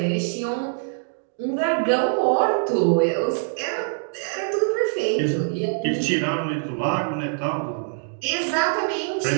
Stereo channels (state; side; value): silent; left; digital silence